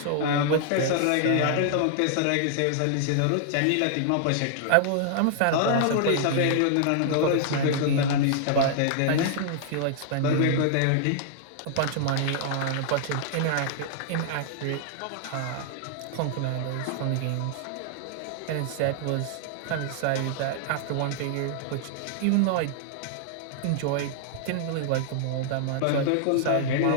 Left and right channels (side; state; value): both; different; correlation -0.01